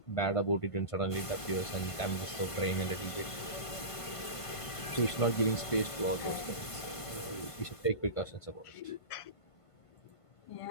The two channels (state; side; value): late; right; 1.5 ms